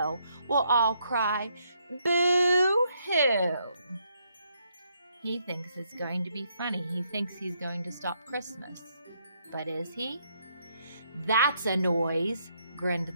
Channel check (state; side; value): inverted; both; correlation -0.74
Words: will all cry, boo-hoo. He thinks it's going to be funny. He thinks he's going to stop Christmas. But is he? That's a noise, grinned